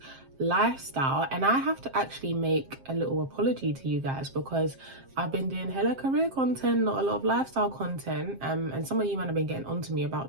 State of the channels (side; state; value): left; late; 7.5 ms